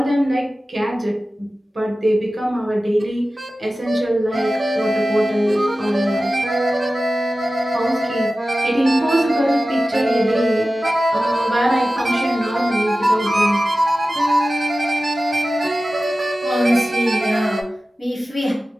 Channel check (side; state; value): both; normal; correlation 0.95